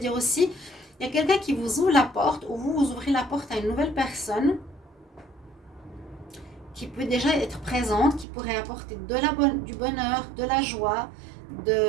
aussi, il y a quelqu'un qui vous ouvre la porte ou vous ouvrez la porte à une nouvelle personne qui peut déjà être présente, qui pourrait apporter du bonheur, de la joie,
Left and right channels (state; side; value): drops out; left; at 8.2 s